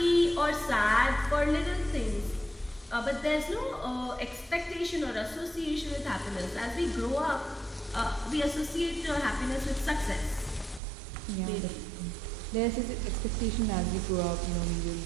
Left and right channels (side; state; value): left; drops out; at 10.8 s